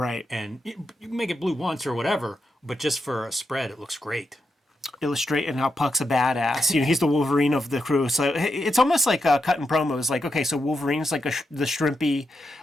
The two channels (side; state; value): both; normal; correlation 0.85